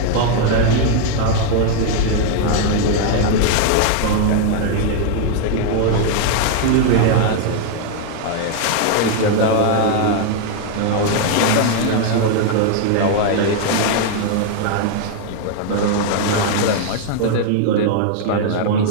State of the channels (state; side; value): different; both; correlation 0.00